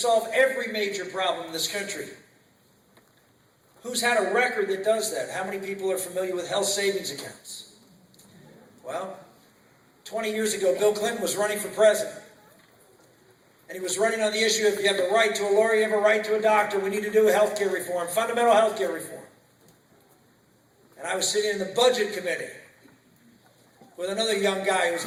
every major problem in this country. Who's had a record that does that? How many people are familiar with health savings accounts? Well, 20 years ago, Bill Clinton was running for president. And he was running on the issue of, you have a right to a lawyer, you have a right to a doctor, we need to do health care reform, fundamental health care reform. And I was sitting in the budget committee with another young guy who was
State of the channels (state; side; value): identical; both; correlation 1.00